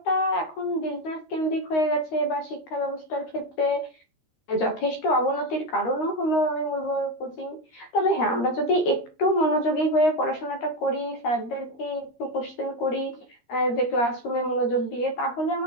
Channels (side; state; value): right; late; 13 ms